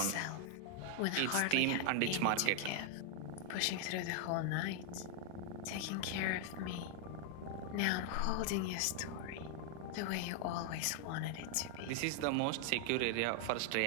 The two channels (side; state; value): both; different; correlation 0.00